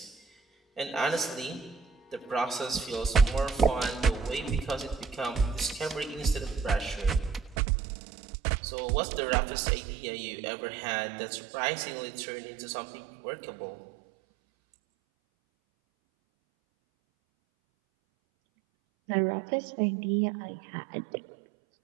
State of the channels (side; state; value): left; drops out; at 7.6 s